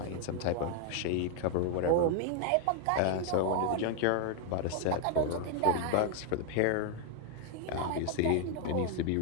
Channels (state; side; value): different; both; correlation 0.01